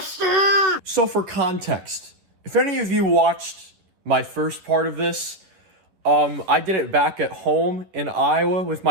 So for context, if any of you watched my first part of this, I did it back at home in Iowa with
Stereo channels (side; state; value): left; late; 11 ms